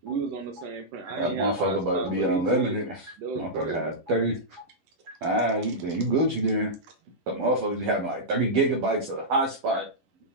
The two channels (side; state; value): left; late; 11 ms